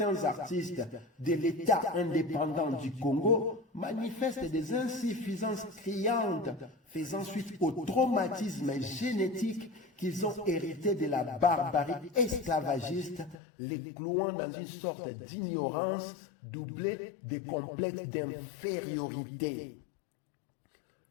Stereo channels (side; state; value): right; drops out; at 13.4 s